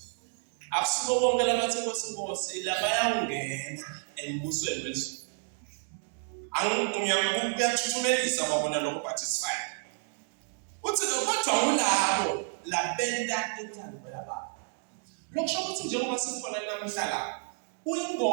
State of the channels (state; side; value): silent; left; 58 dB below the other